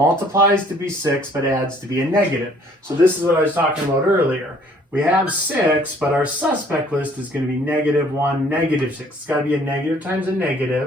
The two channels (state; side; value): normal; both; correlation 0.59